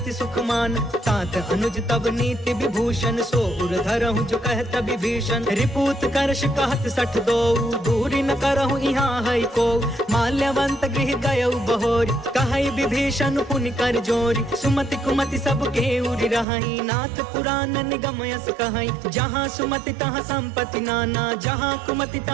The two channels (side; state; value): left; drops out; at 16.4 s